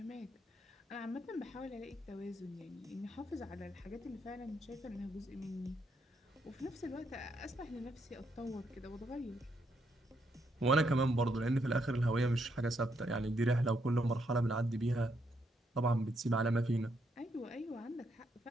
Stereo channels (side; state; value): both; normal; correlation 0.76